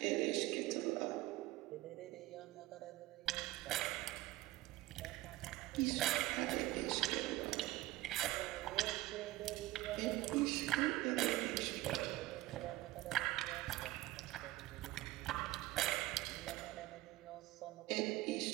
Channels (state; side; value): quieter; left; 16.9 dB